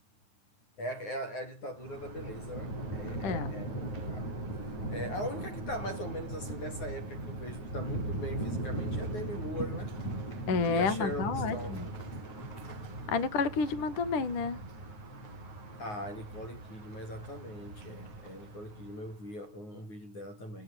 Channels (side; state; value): right; late; 9.5 ms